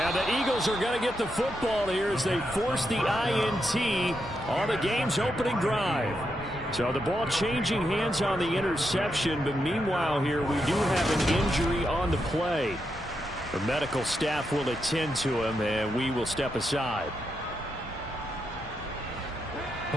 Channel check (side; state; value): both; normal; correlation 0.83